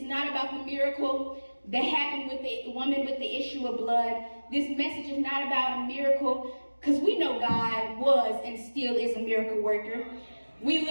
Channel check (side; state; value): both; inverted; correlation -1.00